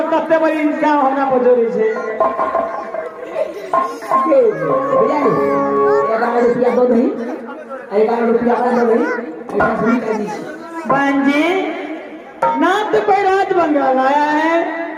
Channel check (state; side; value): identical; both; correlation 1.00